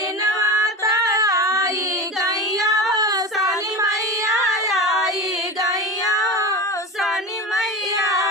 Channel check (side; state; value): both; normal; correlation 0.27